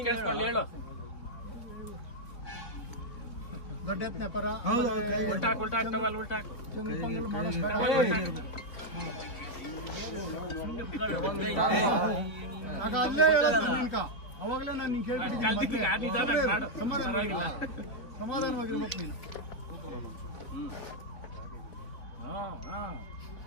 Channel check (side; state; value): right; late; 4.3 ms